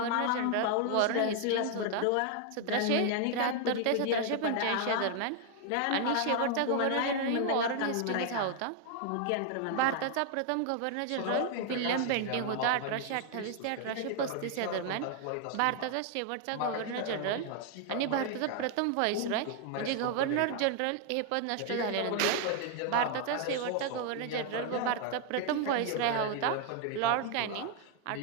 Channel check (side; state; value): both; different; correlation 0.00